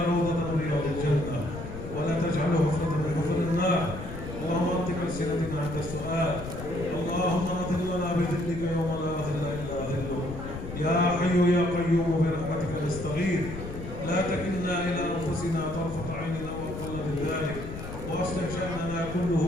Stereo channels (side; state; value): left; noise; rumble, 9 dB below the sound